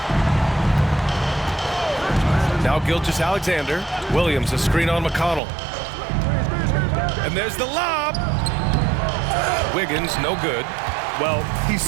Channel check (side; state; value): left; drops out; at 5.4 s